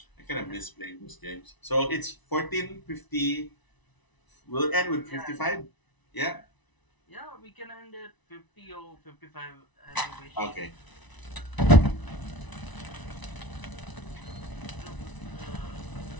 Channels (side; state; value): right; late; 1.0 ms